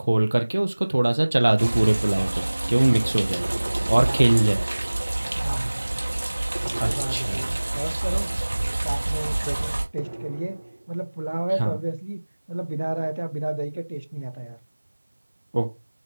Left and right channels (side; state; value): both; inverted; correlation -1.00